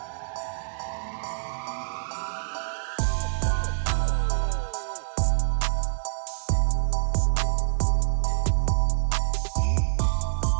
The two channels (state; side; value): silent; left; 61 dB below the other